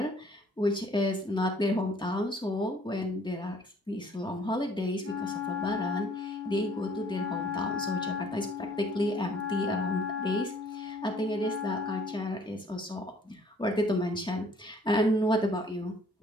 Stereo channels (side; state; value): both; normal; correlation 0.58